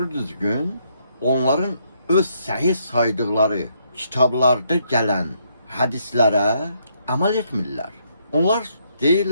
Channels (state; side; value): inverted; both; correlation -0.73